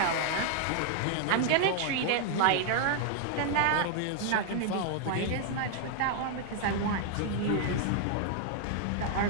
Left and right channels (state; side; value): different; both; correlation 0.00